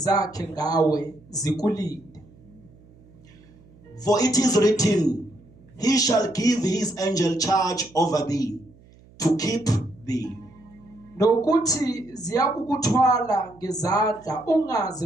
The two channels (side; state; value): right; noise; hum, 26 dB below the sound